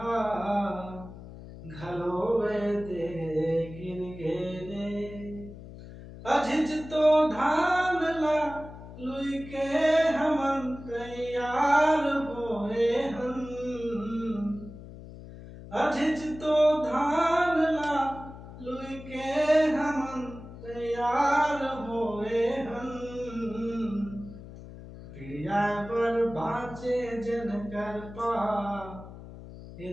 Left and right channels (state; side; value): noise; left; hum, 15 dB below the sound